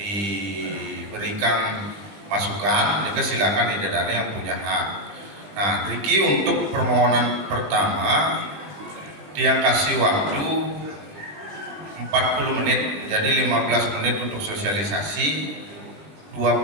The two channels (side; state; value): left; late; 20 ms